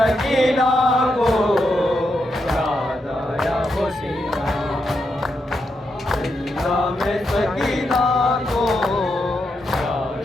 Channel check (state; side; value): normal; both; correlation 0.83